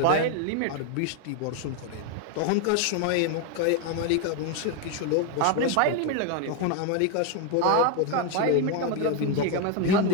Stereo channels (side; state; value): both; different; correlation 0.01